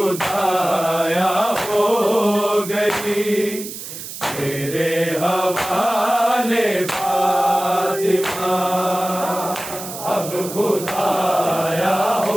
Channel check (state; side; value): noise; right; hiss, 10 dB below the sound